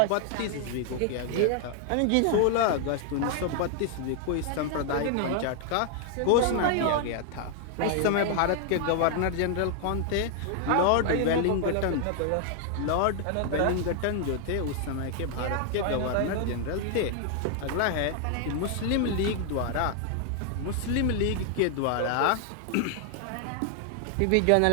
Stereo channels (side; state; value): both; different; correlation 0.00